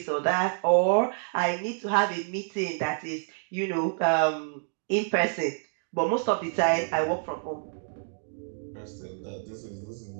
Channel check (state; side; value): silent; left; digital silence